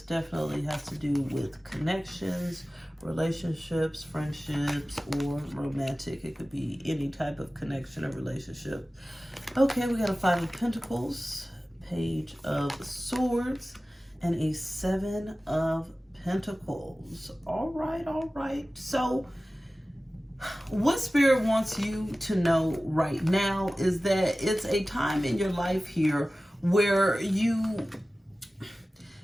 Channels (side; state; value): both; normal; correlation 0.96